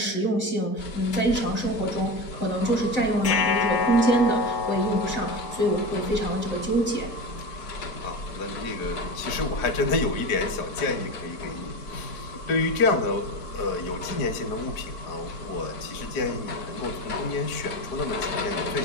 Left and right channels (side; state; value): right; late; 4.9 ms